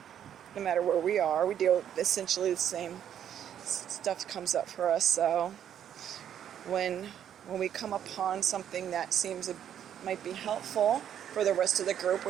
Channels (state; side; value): quieter; left; 9.7 dB